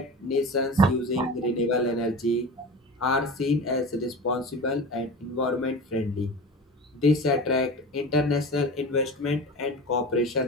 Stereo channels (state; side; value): normal; both; correlation 0.32